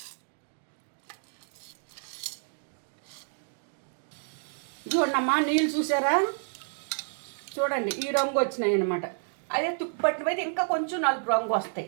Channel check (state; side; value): silent; left; digital silence